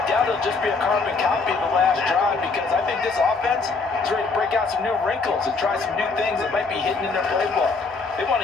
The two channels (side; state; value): right; quieter; 4.2 dB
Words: doubt it'll just be a carbon copy of the last drive, because I think this offense is ready to break out some new wrinkles and try some new things that might be hidden in their playbook. They want